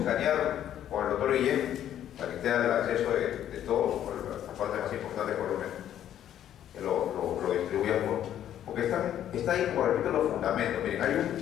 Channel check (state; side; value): quieter; right; 10.9 dB